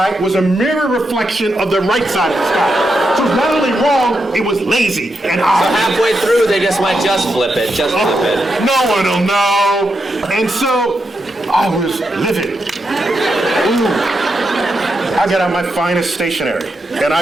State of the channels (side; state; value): both; normal; correlation 0.85